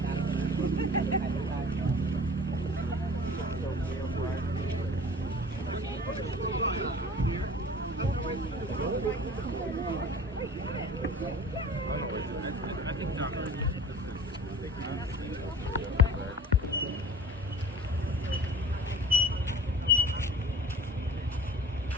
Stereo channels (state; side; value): normal; both; correlation 0.42